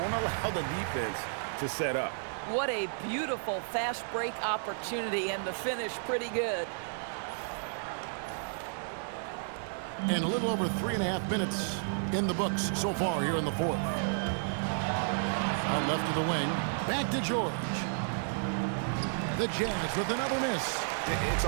allow the defense to set up. What a beautiful fast break opportunity, and the finish pretty good. And a little over 3.5 minutes in the books so far here in the fourth. Out left of the wing. Back to George. The Jazz with another miss. It's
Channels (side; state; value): left; silent; 56 dB below the other